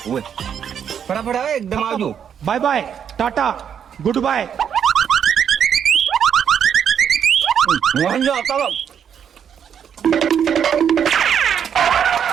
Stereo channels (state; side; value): quieter; left; 8.2 dB